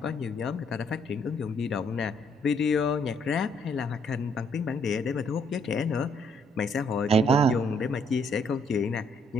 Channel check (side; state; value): both; normal; correlation 0.68